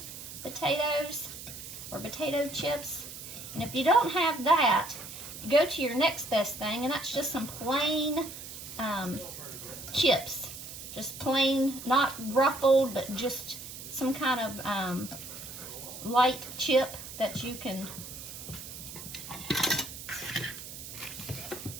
potatoes or potato chips. And if you don't have that, go to your next best thing, and that's just some plain chips. Just plain, not ruffled, but just some kind of light chip that you can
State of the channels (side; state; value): right; noise; hiss, 11 dB below the sound